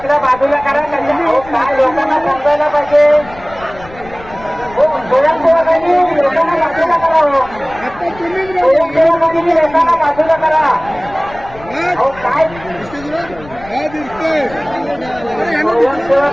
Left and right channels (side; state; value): left; noise; rumble, 19 dB below the sound